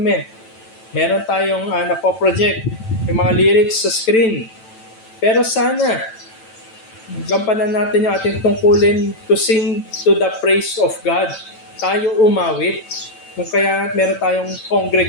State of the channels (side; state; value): right; late; 9.0 ms